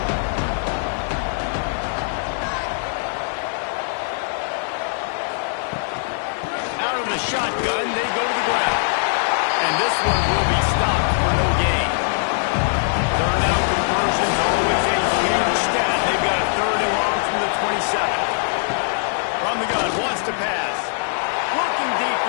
shotgun, they go to the ground. And this one will be stopped for no gain. Third down conversion's always a huge stat. They've got a third and long from the 27. From the gun, wants to pass. Looking deep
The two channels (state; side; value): silent; right; digital silence